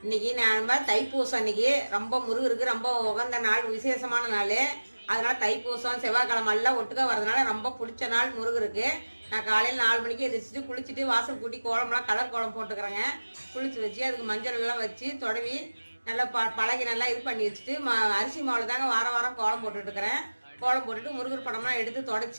இன்னைக்கு நம்ம தைப்பூசம். இன்னைக்கு ரொம்ப முருகருக்கு ரொம்ப உகந்த நாள், விசேஷமான நாள். அதனால தைப்பூசம் செவ்வாய்க்கிழமை எல்லாம் ஒட்டுக்கா வரதுனால ரொம்ப பிடிச்ச நாள் முருகருக்கு. நான் காலையில் 4 மணிக்கு எதிர்ச்சிட்டு குளிச்சுட்டு வாசல் கூட்டி கோலம்லாம் கலர் கோலம் போட்டுக்கிறேங்க. குளிச்சு வச்சு அதுக்கு மஞ்சள் எல்லாம் வச்சு தொடவி நல்லா பழகி நல்லா இது பண்ணி வச்சுட்டு அரிசி மாவில் தாங்க வாரம் வாரம் கோலம் போட்டுட்டுருக்கிறேன். கோலம் போட்டுட்டு முருகர் படம்லாம் எடுத்து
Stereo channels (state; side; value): inverted; both; correlation -1.00